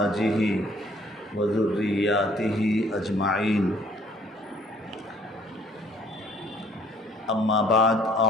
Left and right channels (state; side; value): normal; both; correlation 0.59